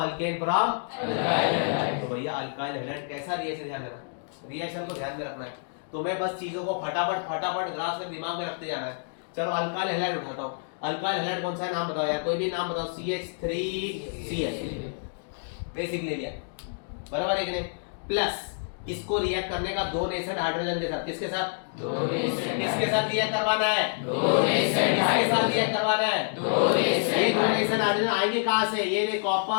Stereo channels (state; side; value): silent; right; digital silence